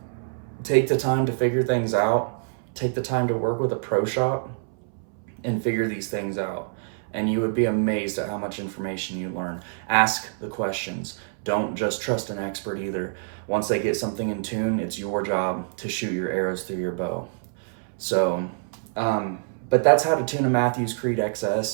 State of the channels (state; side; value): silent; left; 61 dB below the other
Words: Take the time to figure things out. Take the time to work with a pro shop and figure these things out. And you would be amazed at how much information you learn. Ask the questions. Don't just trust an expert either. Once they get something in tune, it's your job to shoot your arrows through your bow. So, but that's how to tune a Matthews Creed